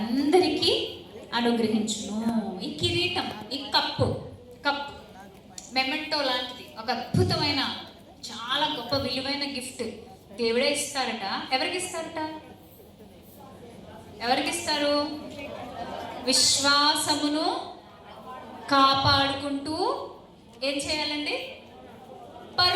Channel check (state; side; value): identical; both; correlation 1.00